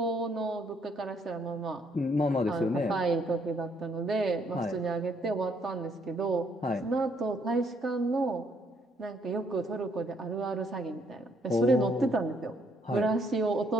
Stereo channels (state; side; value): normal; both; correlation 0.69